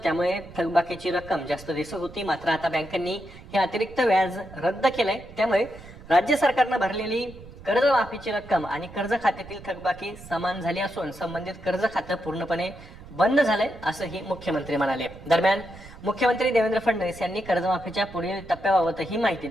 त्यामुळे थकबाकीची रक्कम जास्त दिसत होती. मात्र आता बँकांनी हे अतिरिक्त व्याज रद्द केलंय, त्यामुळे राज्य सरकारनं भरलेली कर्जमाफीची रक्कम आणि कर्ज खात्यातील थकबाकी समान झाली असून संबंधित कर्ज खातं पूर्णपणे बंद झालंय असंही मुख्यमंत्री म्हणाले. दरम्यान मुख्यमंत्री देवेंद्र फडणवीस यांनी कर्जमाफीच्या पुढील टप्प्याबाबतही माहिती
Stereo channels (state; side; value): noise; right; rumble, 18 dB below the sound